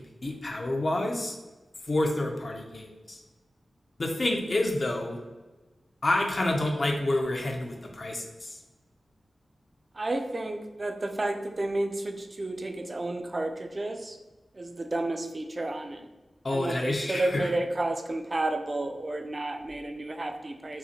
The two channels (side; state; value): both; normal; correlation 0.94